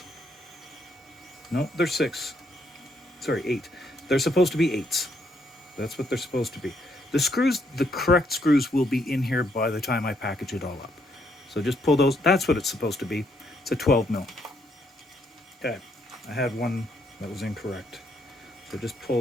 No, they're 6. Sorry, 8. They're supposed to be 8s. That's what they're supposed to be. The screws, the correct screws, will be in here by the time I package it all up. So just pull those. That's what it's supposed to be. It's a 12mm. Okay, I had one that was incorrect. So just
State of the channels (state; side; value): normal; both; correlation 0.73